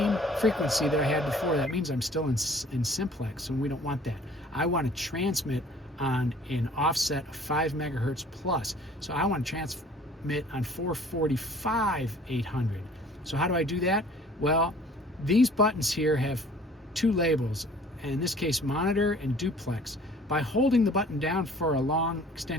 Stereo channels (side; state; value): both; normal; correlation 0.52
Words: frequency that I had before. That means I'm still in simplex, and we don't want that. I want to transmit on an offset of 5 megahertz plus. So I want to transmit on 445 800. So how do I do that? Well, these buttons here have 2 labels, in this case monitor and duplex. By holding the button down for a long